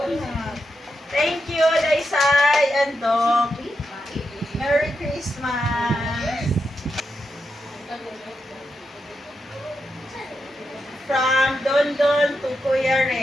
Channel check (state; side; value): normal; both; correlation 0.86